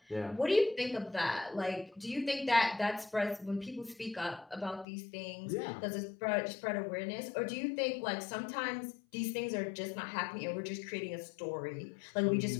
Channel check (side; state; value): right; drops out; at 4.9 s